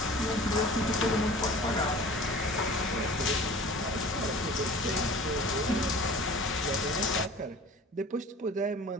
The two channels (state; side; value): normal; both; correlation 0.43